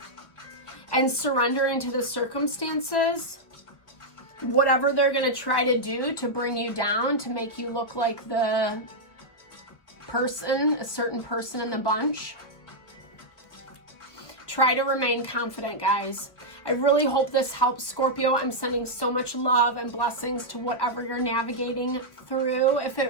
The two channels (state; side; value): late; right; 1.4 ms